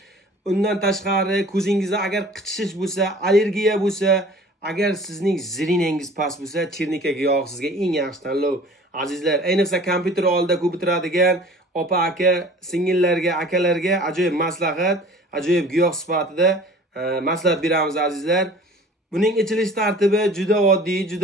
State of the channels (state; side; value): normal; both; correlation 0.46